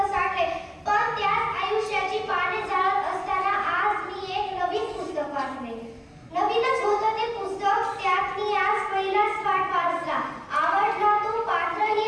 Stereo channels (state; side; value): identical; both; correlation 1.00